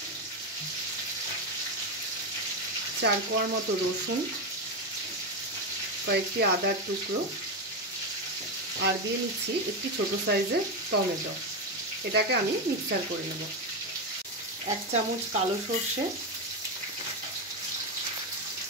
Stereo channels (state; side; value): normal; both; correlation 0.11